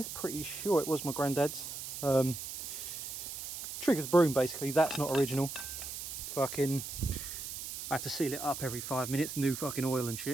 pretty sure it was my granddad's. Triggers broom basically, that's not original. Fucking, I have to seal it up every 5 minutes, new fucking oil and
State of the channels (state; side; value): noise; right; hiss, 7 dB below the sound